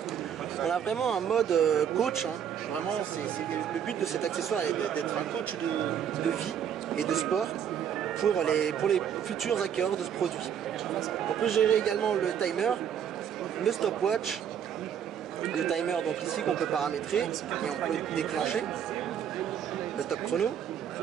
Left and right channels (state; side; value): quieter; left; 8.6 dB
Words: On a vraiment un mode coach, hein. Vraiment le but de cet accessoire est d'être un coach de vie et de sport pour les futurs acquéreurs de ce produit. On peut gérer également le timer, le stopwatch, le timer donc ici qu'on peut paramétrer et on peut déclencher, le top chrono,